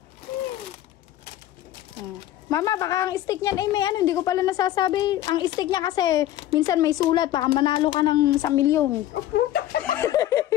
Mama, baka ang stick niyan ay may hindi ko pala nasasabi. Ang stick niya kasi minsan may sulat, baka manalo ka ng 1 milyon.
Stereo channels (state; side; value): quieter; right; 13.1 dB